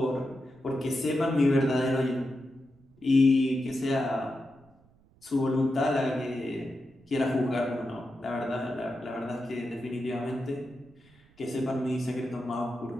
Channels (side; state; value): right; noise; rumble, 30 dB below the sound